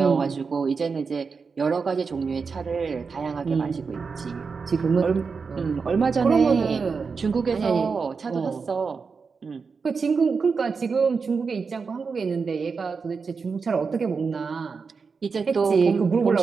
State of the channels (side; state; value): left; quieter; 5.1 dB